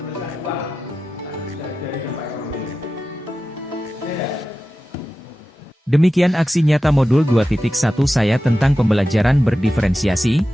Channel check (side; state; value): both; normal; correlation 0.93